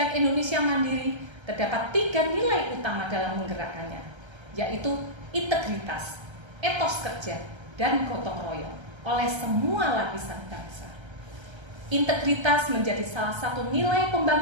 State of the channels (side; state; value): left; late; 1.3 ms